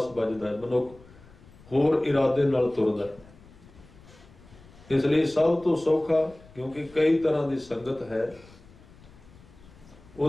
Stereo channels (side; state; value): left; noise; rumble, 23 dB below the sound